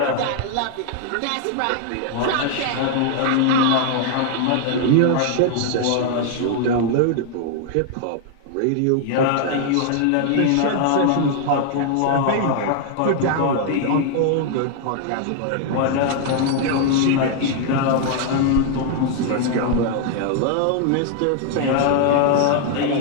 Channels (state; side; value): different; both; correlation 0.00